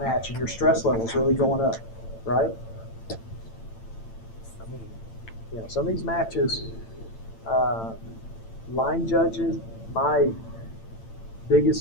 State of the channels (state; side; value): late; right; 8.9 ms